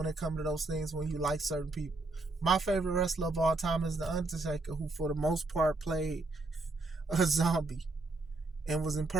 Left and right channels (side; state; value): left; quieter; 3.1 dB